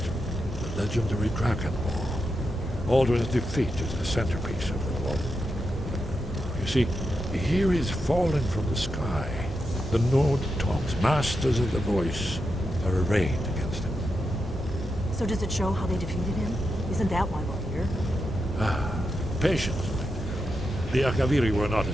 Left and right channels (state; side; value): normal; both; correlation 0.87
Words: the legendary Dragonborn. Alduin's defeat is the centerpiece of the wall. You see, here is fallen from the sky. The Nord Tongs, masters of the voice, are arrayed against him. So does it show how they defeated him? Isn't that why we're here? Patience. The Akaviri were not a